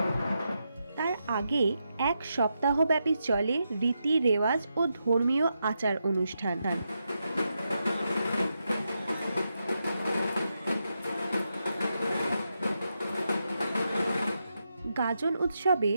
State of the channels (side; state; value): both; inverted; correlation -0.85